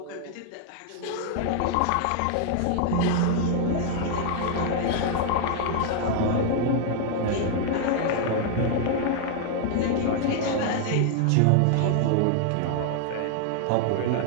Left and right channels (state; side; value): different; both; correlation 0.00